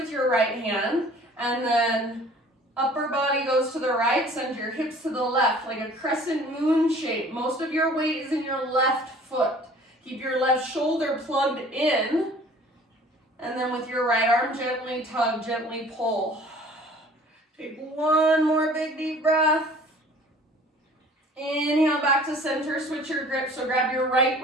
your right hand, and then upper body goes to the right, send your hips to the left, like a crescent moon shape. Most of your weight is in your left foot. Keep your left shoulder plugged in, and then with your right arm, gently tug, gently pull. Take one more big deep breath. Inhale back to center, switch your grip. So grab your right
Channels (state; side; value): normal; both; correlation 0.50